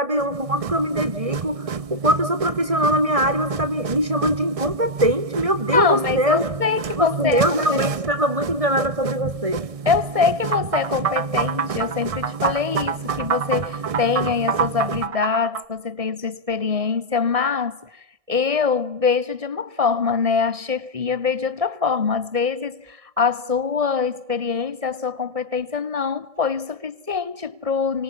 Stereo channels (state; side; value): late; left; 1.6 ms